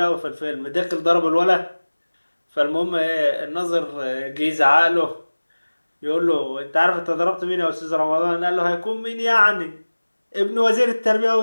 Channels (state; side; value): inverted; both; correlation -1.00